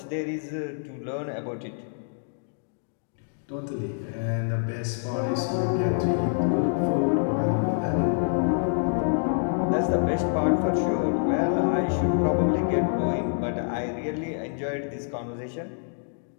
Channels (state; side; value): silent; right; digital silence